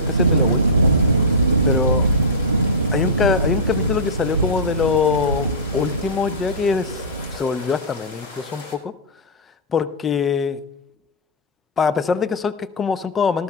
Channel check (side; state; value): both; normal; correlation -0.13